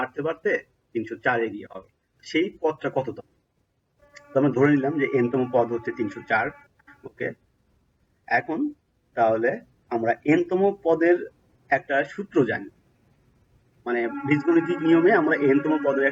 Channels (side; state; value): both; identical; correlation 1.00